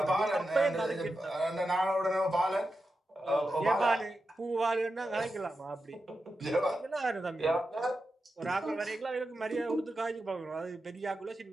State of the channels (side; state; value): both; normal; correlation 0.90